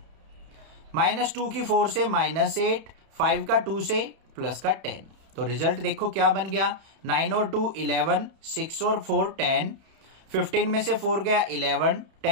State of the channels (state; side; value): late; left; 31 ms